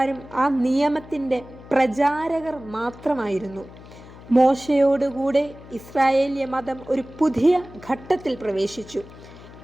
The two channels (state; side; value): noise; left; hum, 18 dB below the sound